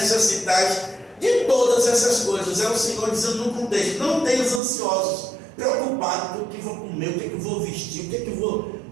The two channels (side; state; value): left; drops out; at 4.6 s